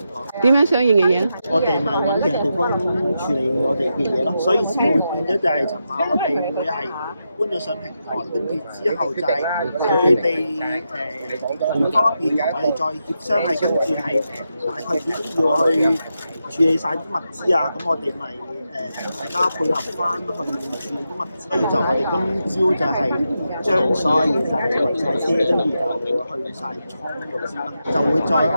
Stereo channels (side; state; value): both; inverted; correlation -0.86